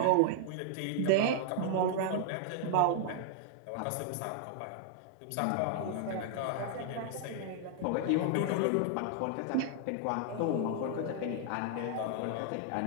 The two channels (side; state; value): both; different; correlation -0.01